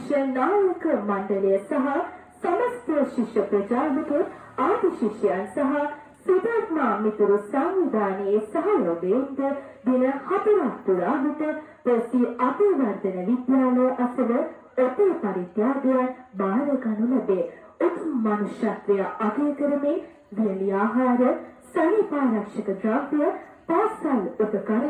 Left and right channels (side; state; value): both; identical; correlation 1.00